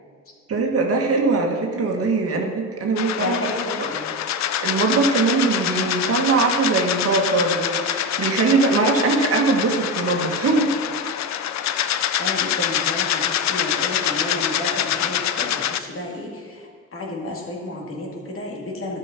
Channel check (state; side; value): normal; both; correlation 0.15